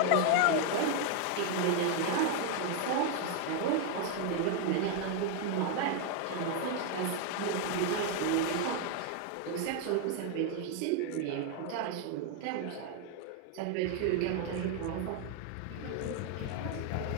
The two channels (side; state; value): both; different; correlation 0.01